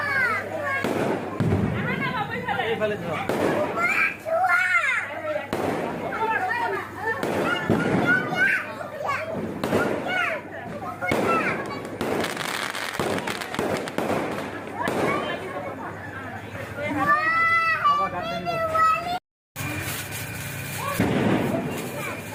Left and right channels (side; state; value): both; identical; correlation 1.00